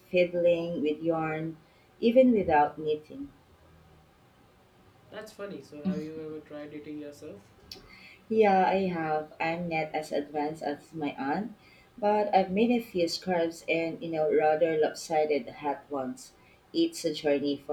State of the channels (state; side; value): identical; both; correlation 1.00